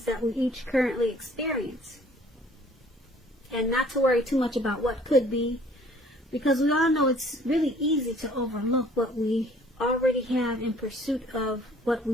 that we each currently experience. And not to worry too much about what could be, because we all know it's really easy to overlook what we already have in pursuit of what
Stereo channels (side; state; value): both; normal; correlation 0.56